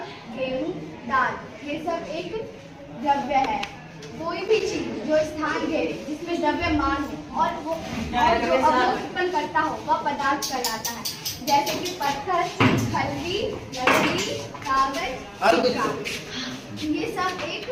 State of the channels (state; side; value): identical; both; correlation 1.00